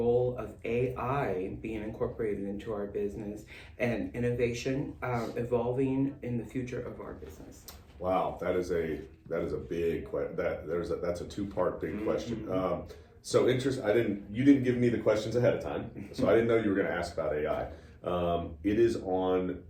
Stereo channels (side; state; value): both; identical; correlation 1.00